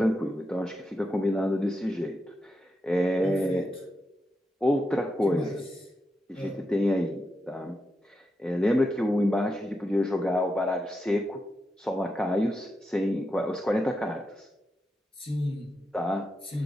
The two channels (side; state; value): both; normal; correlation 0.87